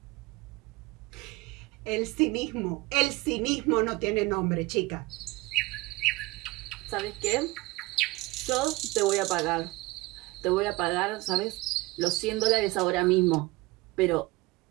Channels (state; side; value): quieter; left; 21.8 dB